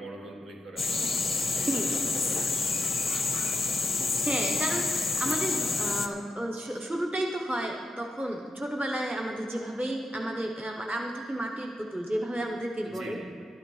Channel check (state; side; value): normal; both; correlation 0.86